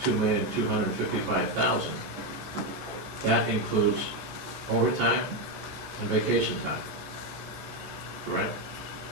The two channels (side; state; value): left; late; 13 ms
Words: 2,255,000, that includes overtime and vacation time, correct?